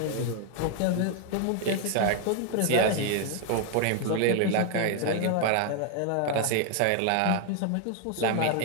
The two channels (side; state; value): both; different; correlation 0.00